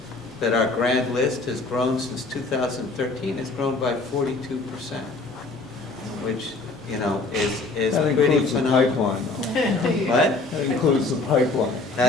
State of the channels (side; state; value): right; quieter; 3.5 dB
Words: that our grad list has grown since 2013, has grown by 42%, which, is That pretty includes the phenomenal. pipeline, though. What? That includes the pipeline.